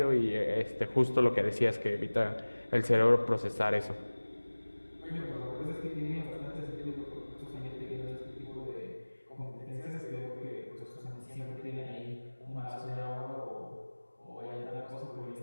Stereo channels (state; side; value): inverted; both; correlation -1.00